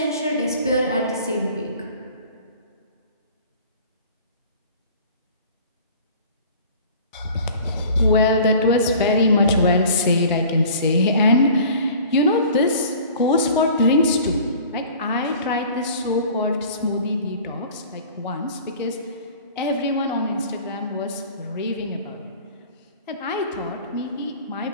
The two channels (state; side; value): inverted; both; correlation -0.46